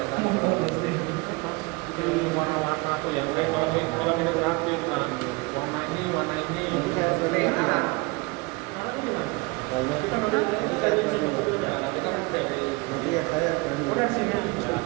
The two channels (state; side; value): quieter; left; 26.2 dB